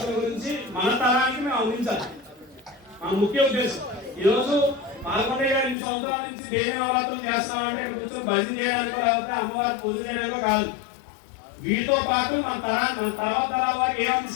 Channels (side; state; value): right; drops out; at 5.8 s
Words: గురించి మన తరానికి మేము అందించాలి. మన ముఖ్య ఉద్దేశం ఈరోజు పాల్గొనే 2 సంవత్సరాల నుంచి దేవి నవరాత్రులు చేస్తామంటే ఇక్కడ కూర్చొని భజన చేయడానికో లేకపోతే అమ్మవారి పూజ చేయడానికో కాదు. వీటితో పాటు మన తర్వాత తరాల వారికి ఏం